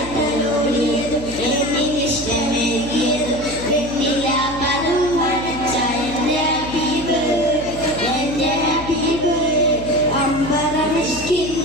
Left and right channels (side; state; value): left; noise; hum, 12 dB below the sound